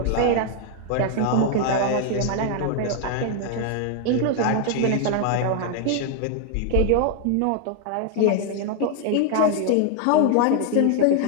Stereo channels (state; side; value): different; both; correlation 0.00